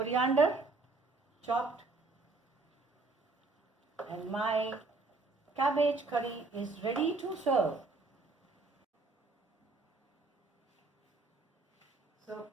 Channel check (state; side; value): quieter; left; 3.6 dB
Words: chopped, and my cabbage curry is ready to serve. So